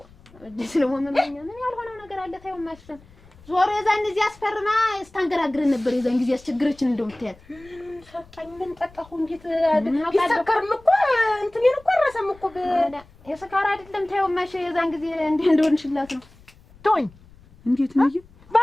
ደስ ነው ምን ያልሆነው ነገር አለ ታየው ማሽን ዞሮ የዛን ጊዜ አስፈርማ ስታንገራግረን ነበር የዛን ጊዜ አስቸግረችን እንደምትያል ሰጣኝ ምን ጠጣሁ እንዴት ይሰከርም እኮ እንትኔን እኮ አረሰም እኮ የሰካራ አይደለም ታየው ማሽ የዛን ጊዜ እንደሆንሽላት ነው ቶኝ እንዴት ነው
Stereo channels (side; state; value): left; noise; rumble, 25 dB below the sound